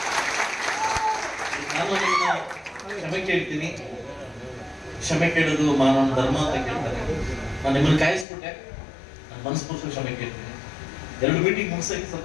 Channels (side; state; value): right; drops out; at 8.2 s